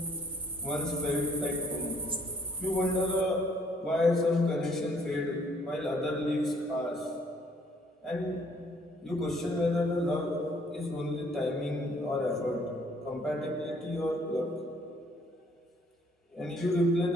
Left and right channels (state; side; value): normal; both; correlation 0.62